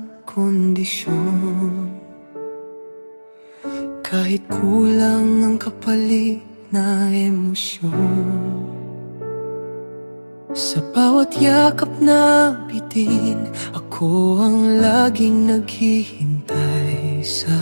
kondisyon, kahit kulang ang kapalit na emosyon. Sa bawat yakap na bitin, ako ang laging naghihintay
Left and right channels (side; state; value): both; inverted; correlation -1.00